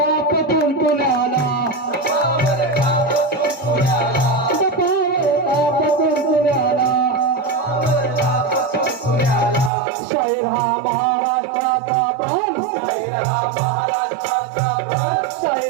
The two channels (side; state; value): left; drops out; at 9.7 s